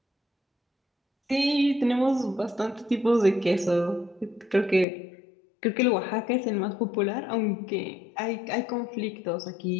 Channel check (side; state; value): right; drops out; at 4.9 s